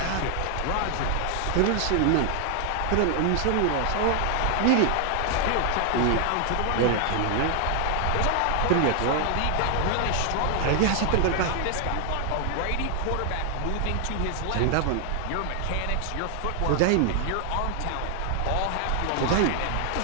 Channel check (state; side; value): different; both; correlation 0.00